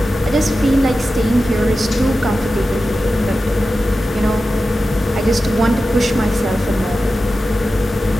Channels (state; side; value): normal; both; correlation 0.93